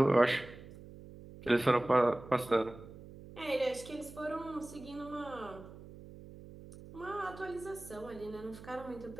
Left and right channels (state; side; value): noise; right; hum, 16 dB below the sound